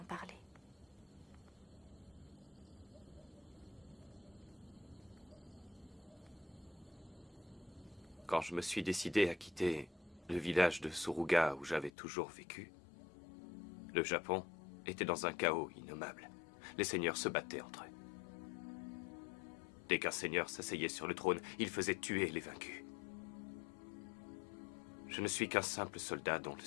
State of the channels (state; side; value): drops out; right; at 11.9 s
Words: parler. Quand je me suis décidé à quitter le village de Suruga où j'avais toujours vécu, le Japon était dans un chaos innommable. Les seigneurs se battaient entre eux. Dès qu'un seigneur s'asseyait sur le trône, il faisait tuer les vaincus. Je ne suis qu'un simple soldat dont le